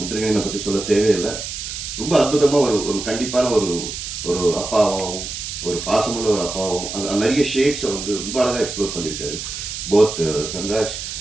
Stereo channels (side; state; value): right; noise; hiss, 7 dB below the sound